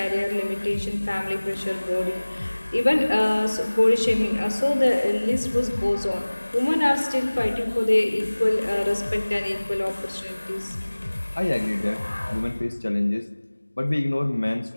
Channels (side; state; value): both; inverted; correlation -1.00